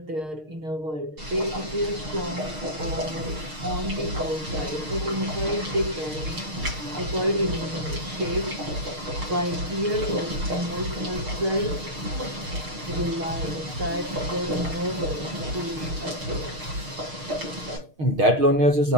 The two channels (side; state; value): left; late; 6.5 ms